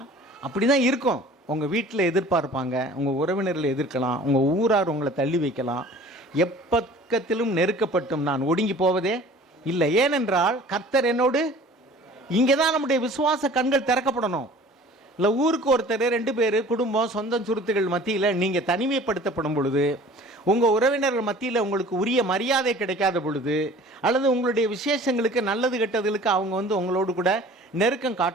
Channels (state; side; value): normal; both; correlation 0.47